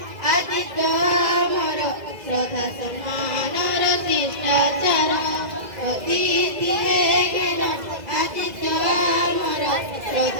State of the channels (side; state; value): left; late; 2.0 ms